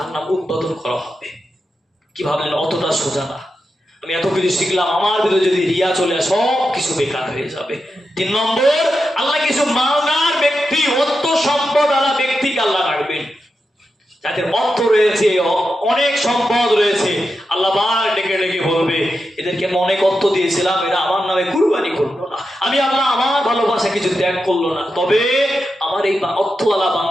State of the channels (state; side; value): normal; both; correlation 0.88